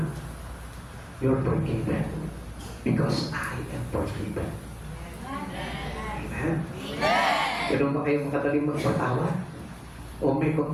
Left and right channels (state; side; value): identical; both; correlation 1.00